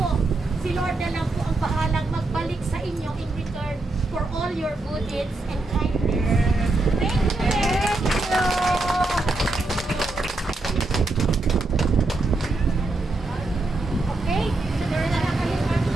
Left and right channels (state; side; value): quieter; left; 3.0 dB